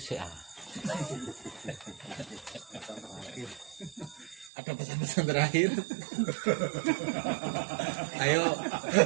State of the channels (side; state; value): left; drops out; at 4.5 s